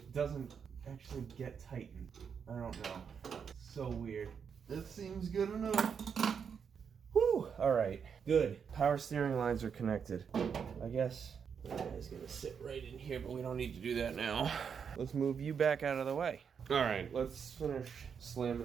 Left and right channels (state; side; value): quieter; left; 6.8 dB